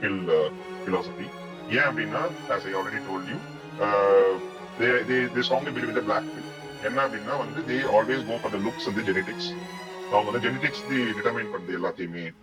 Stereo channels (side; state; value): both; identical; correlation 1.00